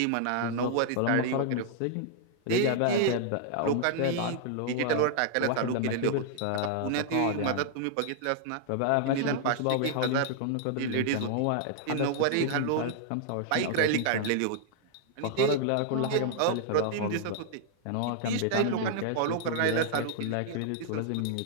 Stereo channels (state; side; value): different; both; correlation -0.01